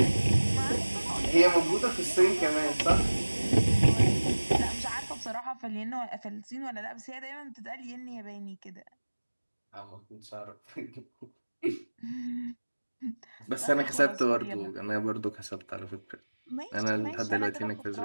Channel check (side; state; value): both; inverted; correlation -1.00